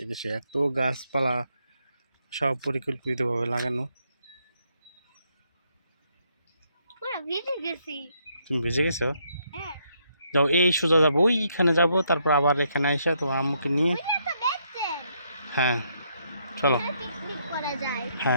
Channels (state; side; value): inverted; both; correlation -0.74